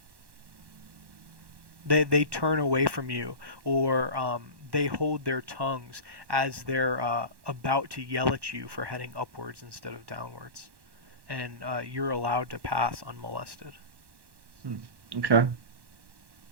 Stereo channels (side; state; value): left; late; 1.1 ms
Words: they turn away from you, or they hold their tongues as they're about to yell at you for heading upwards instead of downwards, and you're allowed to pass unmolested. Hmm. Okay.